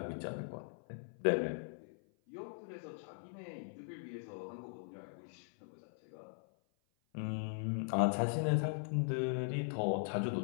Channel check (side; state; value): right; silent; 51 dB below the other